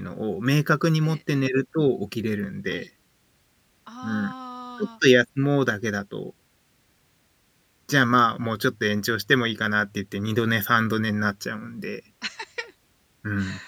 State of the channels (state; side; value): identical; both; correlation 1.00